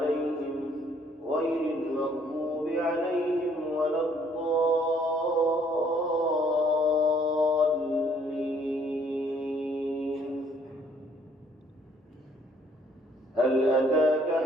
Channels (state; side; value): normal; both; correlation 0.63